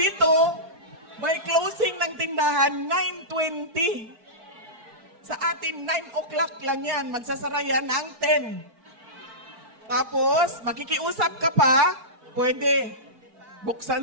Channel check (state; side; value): late; left; 4.5 ms